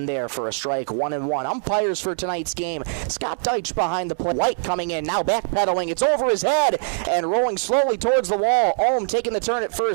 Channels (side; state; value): left; silent; digital silence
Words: there for a strike. 1-1. Umpires for tonight's game. Scott Deitch behind the plate. White coming in, now backpedaling. It's over his head and rolling slowly towards the wall. Ohm taking the turn at